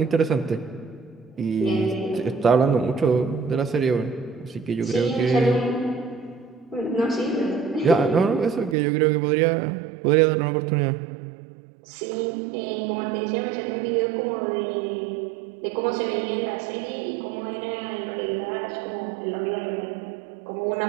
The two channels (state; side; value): drops out; left; at 8.8 s